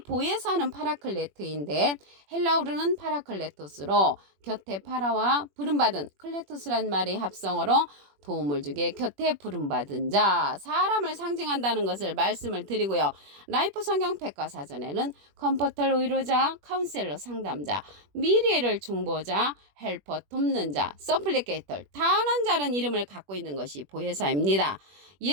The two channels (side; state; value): left; late; 21 ms